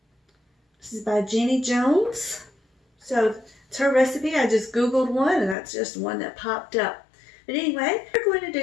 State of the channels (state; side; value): drops out; right; at 5.6 s